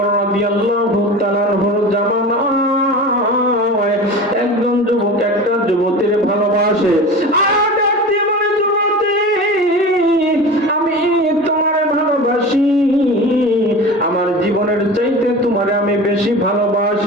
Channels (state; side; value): normal; both; correlation 0.33